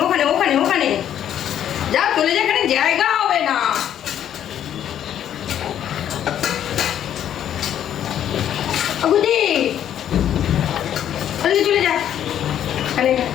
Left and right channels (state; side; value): quieter; right; 10.3 dB